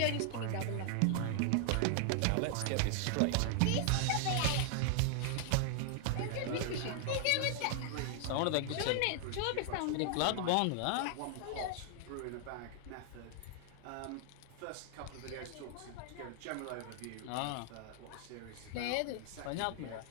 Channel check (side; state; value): both; different; correlation 0.00